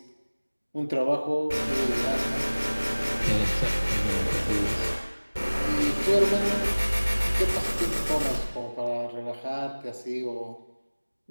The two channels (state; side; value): inverted; both; correlation -1.00